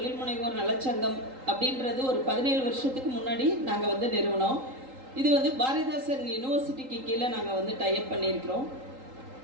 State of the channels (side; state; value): left; late; 3.8 ms